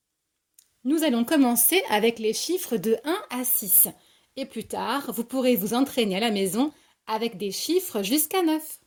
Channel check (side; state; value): both; identical; correlation 1.00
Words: Nous allons commencer avec les chiffres de 1 à 6. Et plus tard, vous pourrez vous entraîner à la maison avec des chiffres jusqu'à 9.